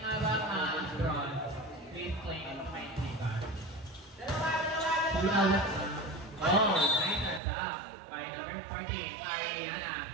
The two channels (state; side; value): drops out; left; at 7.4 s